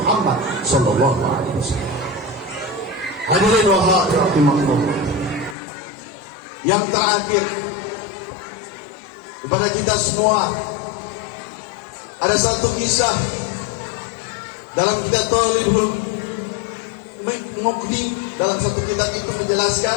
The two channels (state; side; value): drops out; right; at 5.6 s